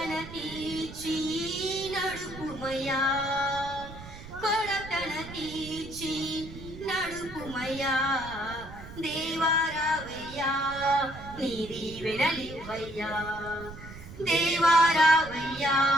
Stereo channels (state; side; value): noise; right; rumble, 14 dB below the sound